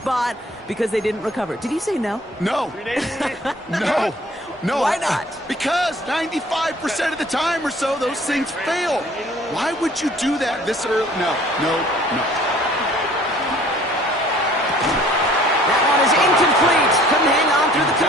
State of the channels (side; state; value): both; normal; correlation 0.54